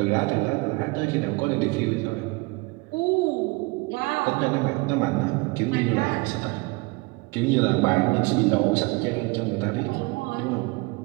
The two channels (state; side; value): quieter; left; 25.8 dB